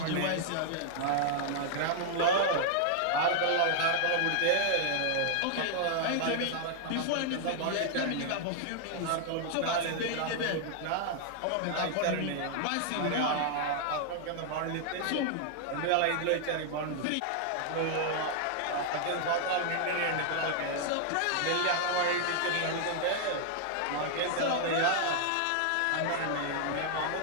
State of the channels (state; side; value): different; both; correlation 0.00